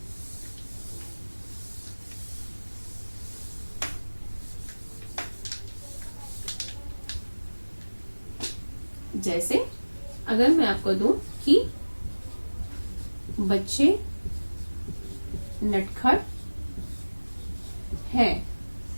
जैसे अगर मैं आपको दूं कि बच्चे नटखट हैं,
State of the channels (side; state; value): both; inverted; correlation -1.00